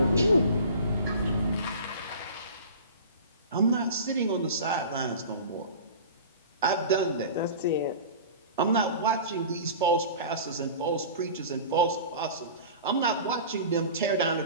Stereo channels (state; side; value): inverted; both; correlation -0.37